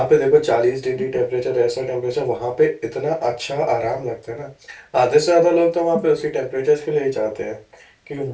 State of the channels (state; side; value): identical; both; correlation 1.00